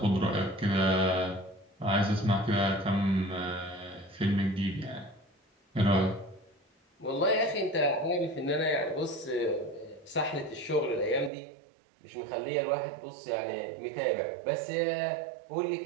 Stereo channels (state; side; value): drops out; left; at 11.3 s